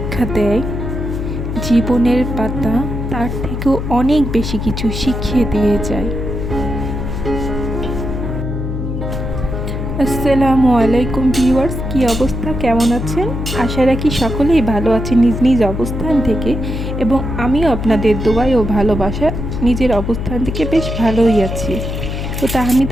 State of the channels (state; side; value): noise; left; hum, 4 dB below the sound